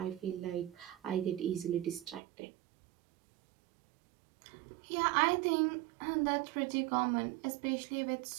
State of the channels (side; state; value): left; drops out; at 2.2 s